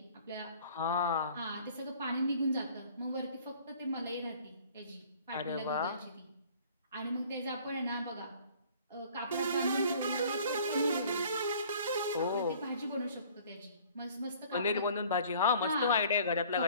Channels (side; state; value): both; inverted; correlation -0.52